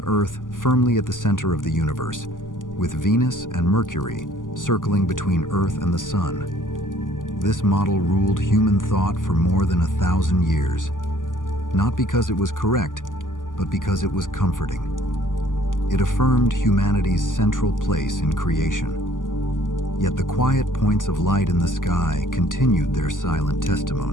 Earth firmly at the center of the universe, with Venus and Mercury circling between Earth and the Sun. This model ruled human thought for more than 1,000 years, not because it was correct, but because it was comforting. It affirmed humanity's central place in creation. Yet the quiet points of light in the sky continued their silent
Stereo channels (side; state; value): right; late; 0.88 ms